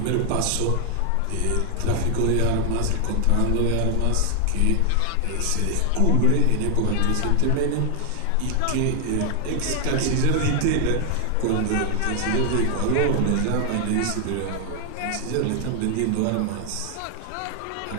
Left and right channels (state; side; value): different; both; correlation 0.00